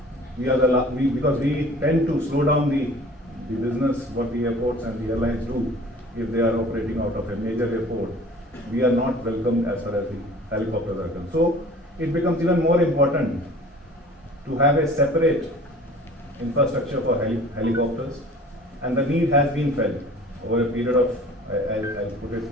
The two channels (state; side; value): normal; both; correlation 0.46